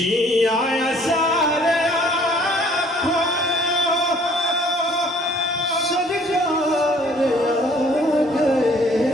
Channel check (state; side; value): normal; both; correlation 0.58